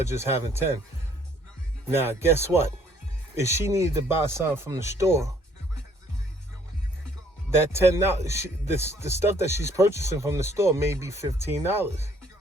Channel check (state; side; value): normal; both; correlation 0.62